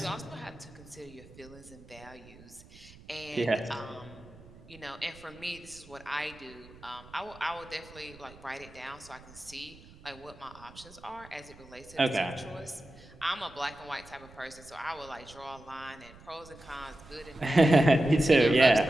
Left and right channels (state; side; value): noise; right; rumble, 21 dB below the sound